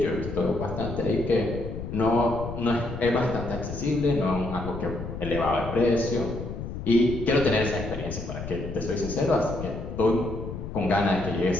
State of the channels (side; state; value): left; noise; rumble, 8 dB below the sound